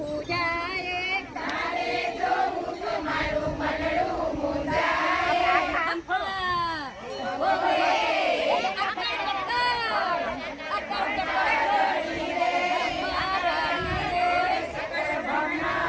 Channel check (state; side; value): identical; both; correlation 1.00